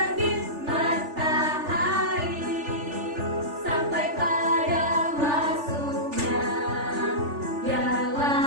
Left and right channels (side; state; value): left; late; 3.4 ms